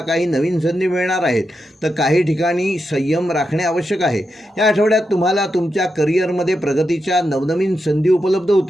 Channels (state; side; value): normal; both; correlation 0.87